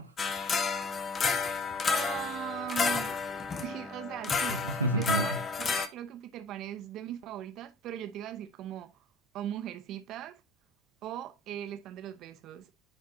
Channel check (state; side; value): normal; both; correlation 0.49